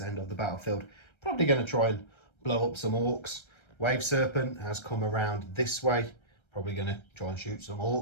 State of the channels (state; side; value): late; right; 1.3 ms